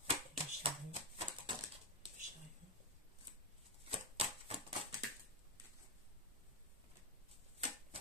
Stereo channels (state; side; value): normal; both; correlation 0.03